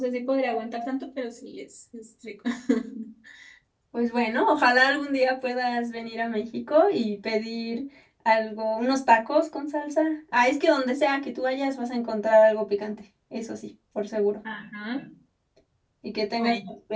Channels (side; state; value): both; identical; correlation 1.00